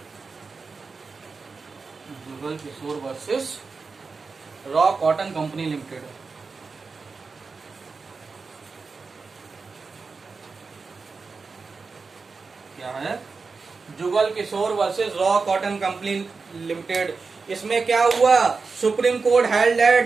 versus Raw Cotton Company Limited. क्या है, Jugal Kishore versus Raw Cotton Company Limited. इसमें क्या हुआ, Supreme Court held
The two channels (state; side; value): quieter; left; 4.5 dB